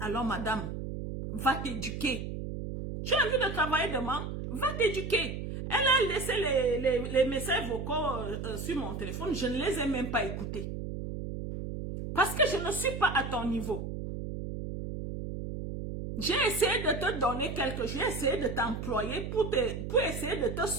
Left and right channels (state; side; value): noise; right; hum, 6 dB below the sound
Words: Alors madame, va t'éduquer. Tu as envie de travailler demain, va t'éduquer. Elle a laissé les messages vocaux sur mon téléphone, je ne les ai même pas écoutés. Parce que je ne suis pas à ton niveau. J'ai essayé de te donner quelque chose, j'ai essayé de t'employer pour essayer de te